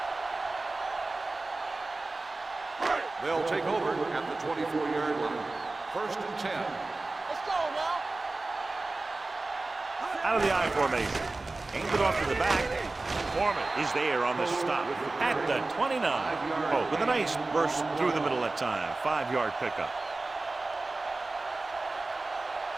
They'll take over at the 24-yard line. 1st and 10. Let's go now. Out of the I formation. Aimed it off to the back. Foreman is there on the stop at the 29. Oh, with a nice burst through the middle that time. 5-yard pickup.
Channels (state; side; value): quieter; left; 3.3 dB